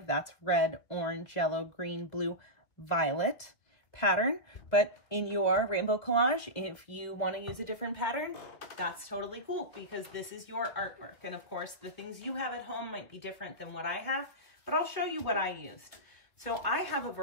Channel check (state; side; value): late; right; 2.0 ms